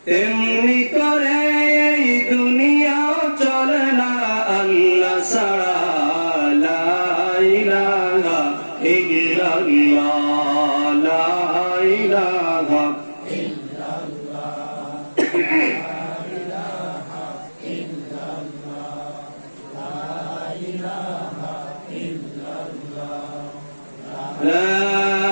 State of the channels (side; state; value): both; inverted; correlation -1.00